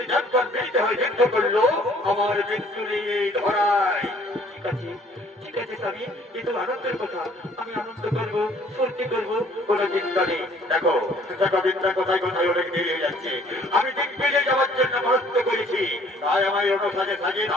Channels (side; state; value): both; normal; correlation 0.58